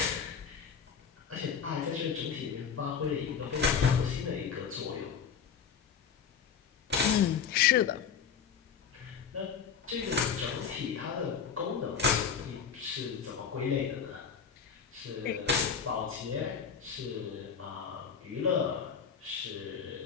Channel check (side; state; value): right; quieter; 7.0 dB